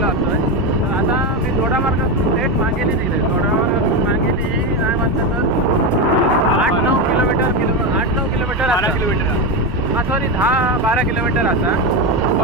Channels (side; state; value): both; normal; correlation 0.13